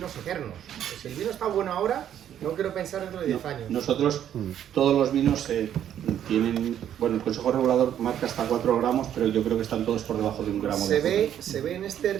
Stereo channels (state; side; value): quieter; left; 10.3 dB